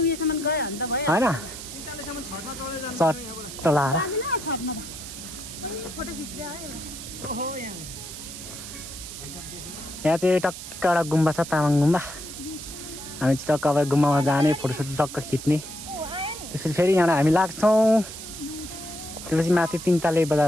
होइन चट्ट लाएर यहाँ चाहिँ टक्क एउटा गुम्बा छ तामाङ गुम्बा हामी चाहिँ टक्क अब गुम्बामा जाने फोटोसोटो टक्क खिच्ने त्यसपछि फेरि यहाँबाट हामी लाग्छौँ त्यसपछि माथि 3 ताले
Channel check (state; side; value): noise; right; hiss, 11 dB below the sound